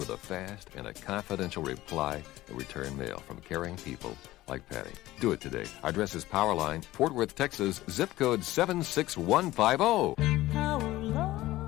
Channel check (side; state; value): right; quieter; 16.8 dB